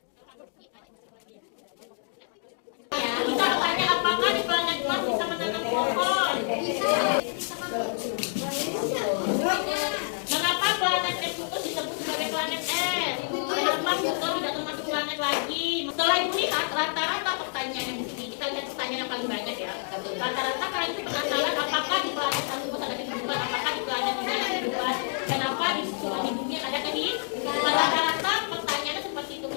Kita bertanya apakah di planet Mars bisa menanam pohon? Mengapa planet Neptunus disebut sebagai planet es? Kenapa Pluto tidak termasuk planet lagi? Setelah ibu lihat rata-rata pertanyaan yang di sini, kita lihat pertanyaan yang paling banyak ya. Rata-rata kalian itu penasaran apakah di planet Neptunus ada kehidupan, apakah di planet ini ada kehidupan, kenapa di bumi ada kehidupan? Rata-rata pertanyaannya seperti itu.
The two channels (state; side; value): silent; right; 58 dB below the other